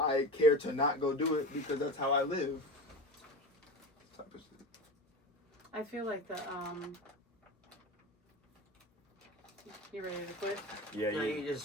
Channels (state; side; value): normal; both; correlation 0.28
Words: care to not go do it because that's how I live. Type of shit. I feel like you ready to quit? Yeah. No, you